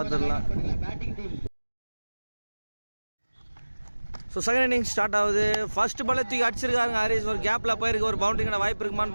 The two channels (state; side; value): inverted; both; correlation -1.00